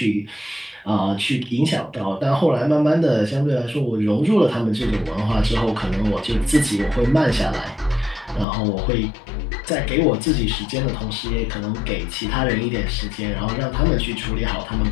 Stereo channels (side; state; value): right; drops out; at 8.5 s